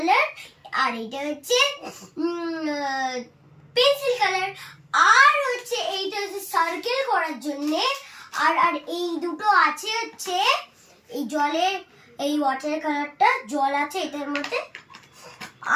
আর এটা হচ্ছে পেন্সিল কালার, আর হচ্ছে এইটা হচ্ছে সার্কেল করার জন্য। আর আর এই দুটো আছে হচ্ছে এই জলের, এই ওয়াটার কালারটা জল আছে এটার মধ্যে।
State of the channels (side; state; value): both; identical; correlation 1.00